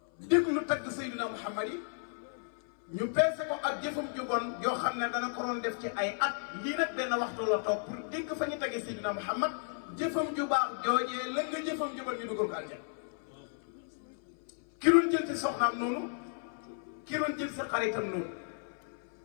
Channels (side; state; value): right; silent; 55 dB below the other